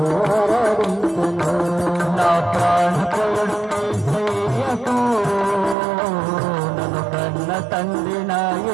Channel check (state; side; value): drops out; left; at 5.8 s